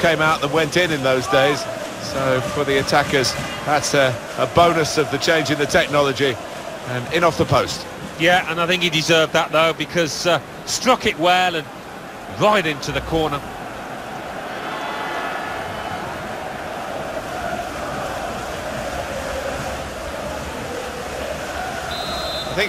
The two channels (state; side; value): identical; both; correlation 1.00